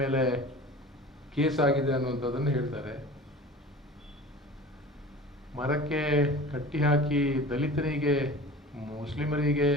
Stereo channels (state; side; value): normal; both; correlation 0.39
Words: ಮೇಲೆ ಕೇಸ್ ಆಗಿದೆ ಅನ್ನುವಂಥದ್ದನ್ನು ಹೇಳ್ತಾರೆ. ಮರಕ್ಕೆ ಕಟ್ಟಿ ಹಾಕಿ ದಲಿತರಿಗೆ, ಮುಸ್ಲಿಮರಿಗೆ,